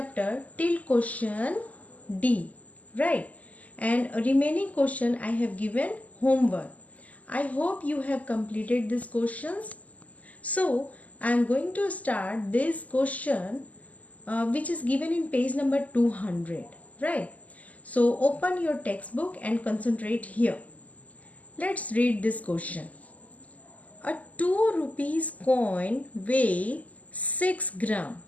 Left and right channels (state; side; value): late; right; 0.074 ms